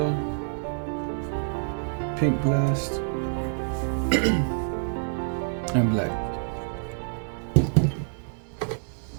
pink blast, and black.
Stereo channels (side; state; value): left; silent; digital silence